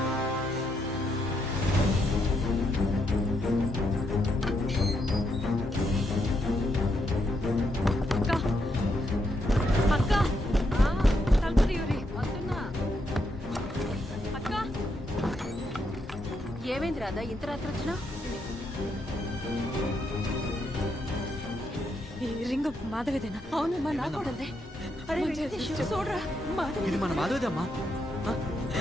అక్క తలుపు తీయరి. అక్క ఏమైంది రాదా ఇంత రాత్రి వచ్చినా? ఈ రింగ్ మాధవిదేనా? అవునమ్మా, నా కూడదే. అరే వెంకటేష్, చూడరా, మాధవి. ఇది మన మాధవిదమ్మా.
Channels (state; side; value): normal; both; correlation 0.79